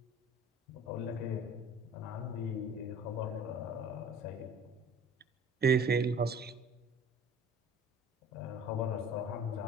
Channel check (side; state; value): both; normal; correlation 0.46